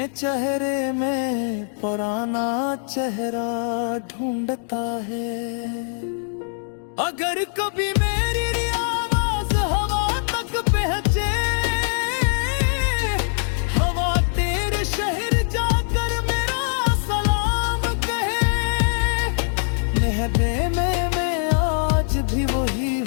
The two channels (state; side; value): silent; right; digital silence